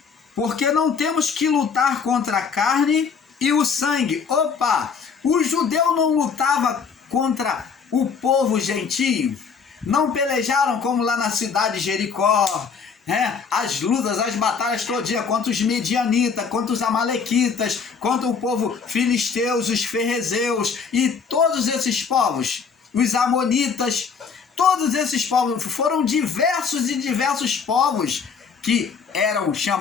Porque não temos que lutar contra a carne e o sangue. O judeu não lutava contra o povo gentio. Não pelejaram como lá na cidade de Jericó, as lutas, as batalhas todinhas contra os medianitas, contra os amalequitas, contra o povo filisteus, os ferrezeus e todos esses povos, os amonitas. Todos esses povos foram diversos povos que eram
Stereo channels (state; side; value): quieter; right; 5.9 dB